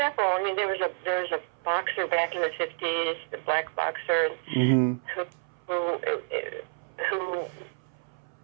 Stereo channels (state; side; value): silent; left; 59 dB below the other